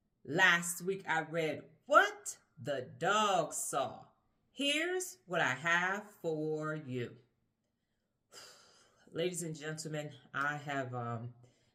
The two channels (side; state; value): both; identical; correlation 1.00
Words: Last week I read What the Dog Saw. Here's what I have for you. Ladies and gentlemen, I have